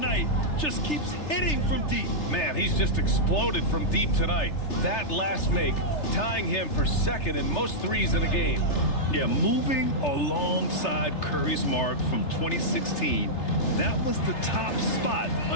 Just keeps hitting from deep. Man, he's just exploded from deep tonight. That last make, tying him for second in most threes in a game. Yeah, moving alongside Curry's mark from 2016. That was the top spot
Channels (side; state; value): right; late; 3.3 ms